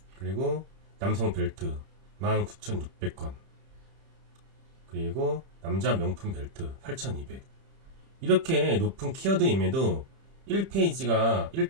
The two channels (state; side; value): late; left; 30 ms